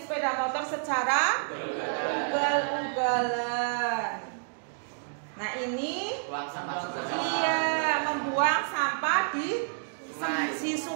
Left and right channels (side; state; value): left; silent; 58 dB below the other